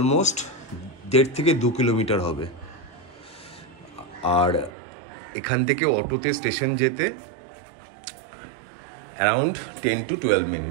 1.5 থেকে 2 কিলোমিটার হবে। আর এখান থেকে অটোতে স্টেশন যেতে around 10 to 12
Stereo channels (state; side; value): drops out; left; at 4.7 s